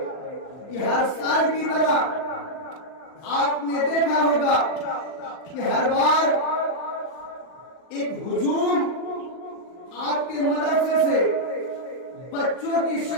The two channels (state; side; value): late; right; 39 ms